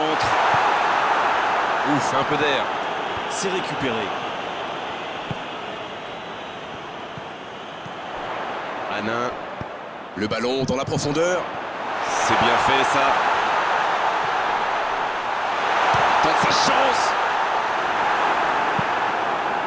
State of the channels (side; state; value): both; identical; correlation 1.00